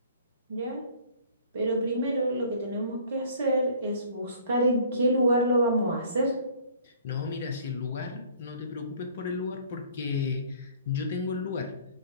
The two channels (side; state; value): both; inverted; correlation -0.53